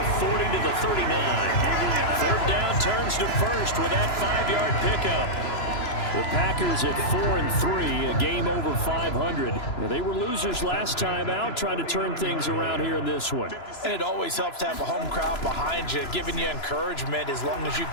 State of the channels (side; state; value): right; late; 3.0 ms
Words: 40 to the 39. 3rd down turns to first with that 5-yard pickup. The Packers at 4-3, a game over 500. Now, they were losers last time out, trying to turn things around here in this one. And it always helps to have a home crowd behind you, giving you encouragement as long as you